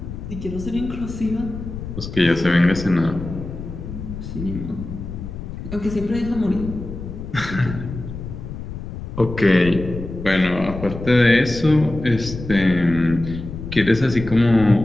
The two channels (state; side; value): noise; left; rumble, 9 dB below the sound